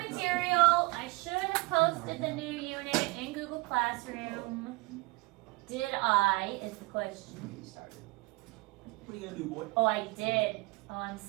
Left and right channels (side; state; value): left; quieter; 24.5 dB